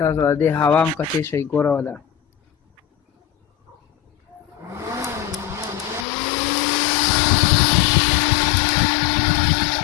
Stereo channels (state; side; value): drops out; right; at 6.1 s